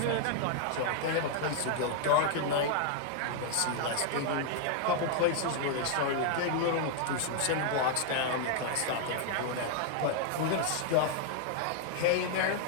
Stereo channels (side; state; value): both; different; correlation 0.00